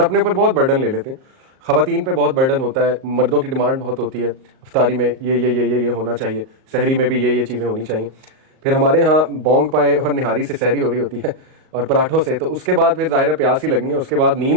اوپر بہت برڈن لے لیتے ہیں. خواتین پہ بہت برڈن ہوتا ہے, مردوں کی ڈیمانڈ بہت ہوتی ہے, افطاری میں یہ ہونا چاہیے, سحری میں بھی یہ چیزیں ہونی چاہیے. پھر ہمارے ہاں بینگ پہ اور نہاری سے سحری ہو رہی ہوتی ہے اور پراٹھوں سے, تو اس کے بعد پھر ظاہر پیاس ہی لگنی ہے, اس کے بعد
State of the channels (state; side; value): late; left; 38 ms